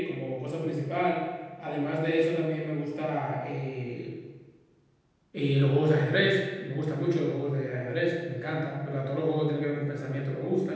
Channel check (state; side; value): identical; both; correlation 1.00